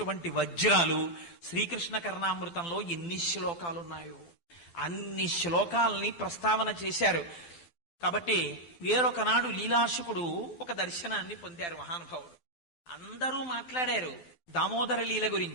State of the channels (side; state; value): right; late; 12 ms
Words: వజ్రాలు. శ్రీకృష్ణ కర్ణామృతంలో ఎన్ని శ్లోకాలున్నాయో అన్ని శ్లోకాలని ప్రస్తావన చేశారు. కాబట్టి వేరొకనాడు లీలాశుకుడు ఒక దర్శనాన్ని పొందారు మహానుభావుడు. అందరూ మాట్లాడారు దామోదర లీల